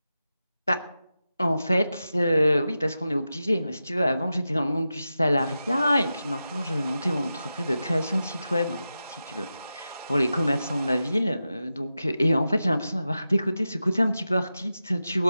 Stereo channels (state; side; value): inverted; both; correlation -0.92